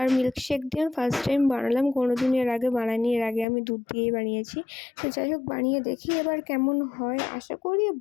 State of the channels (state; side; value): drops out; right; at 3.5 s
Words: মিল্কশেক দিয়ে ফার্স্ট টাইম বানালাম, কোনোদিন এর আগে বানাইনি, এর আগে আমি দুধ দিয়েই বানিয়েছি। তো যাই হোক বানিয়ে দেখি এবার কেমন হয়, আশা করি